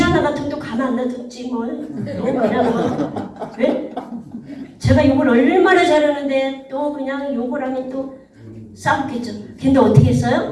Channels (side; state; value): both; identical; correlation 1.00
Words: 같으면 또 가만 안 놔뒀지 뭘. 왜? 제가 욕을 얼마나 잘하는데 또 그냥 욕을 하면 또 싸웠겠죠. 근데 어떻게